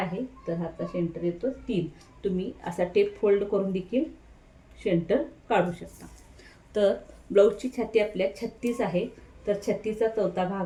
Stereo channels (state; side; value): identical; both; correlation 1.00